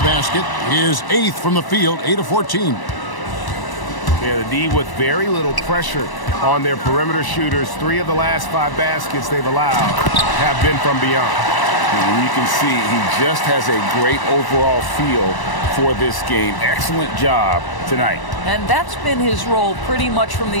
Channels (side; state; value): right; late; 1.0 ms